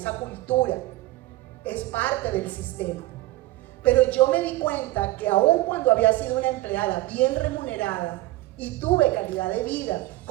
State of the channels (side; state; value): left; quieter; 17.8 dB